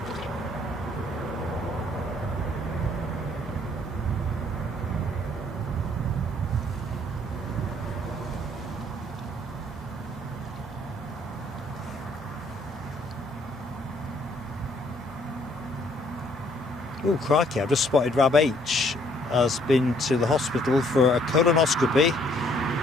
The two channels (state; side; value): normal; both; correlation 0.64